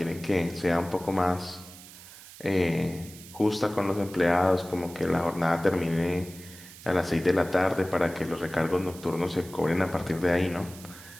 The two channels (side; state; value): right; noise; hiss, 18 dB below the sound